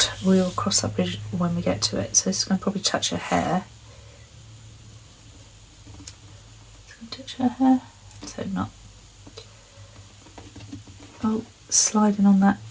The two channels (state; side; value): identical; both; correlation 1.00